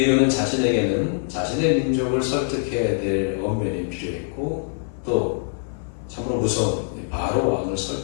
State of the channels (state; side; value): silent; right; digital silence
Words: 자신에게는 자신의 민족을 설득해야 될 언변이 필요했고 또 참으로 무서운 바로 왕을